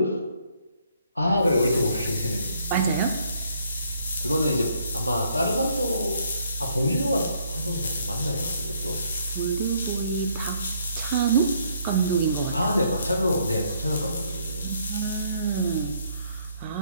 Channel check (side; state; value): both; inverted; correlation -0.67